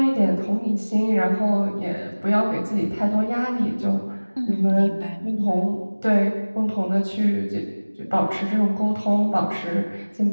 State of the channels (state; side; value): inverted; both; correlation -1.00